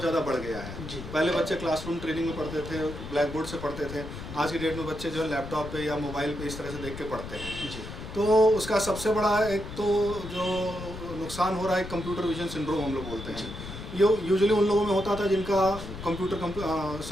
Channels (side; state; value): left; noise; rumble, 10 dB below the sound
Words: ज़्यादा बढ़ गया है। पहले बच्चे क्लासरूम ट्रेनिंग में पढ़ते थे, ब्लैक बोर्ड से पढ़ते थे। आज की डेट में बच्चे जो है लैपटॉप पे या मोबाइल पे इस तरह से देख के पढ़ते हैं। तो उसका सबसे बड़ा एक तो जो नुकसान हो रहा है, कंप्यूटर विजन सिंड्रोम हम लोग बोलते हैं। ये यूजुअली उन लोगों में होता था जिनका